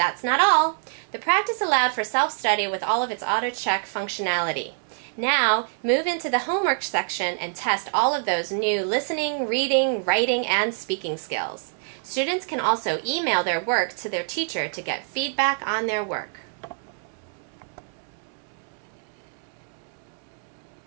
not all. The practice allowed for self-study with all of its auto-check functionality. Now, move into the homework section and test all of those new listening, reading, writing, and speaking skills. Students can also email their work to their teacher to get feedback on their work.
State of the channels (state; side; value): silent; left; digital silence